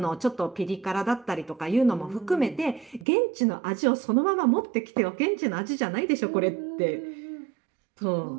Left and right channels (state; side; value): drops out; left; at 3.1 s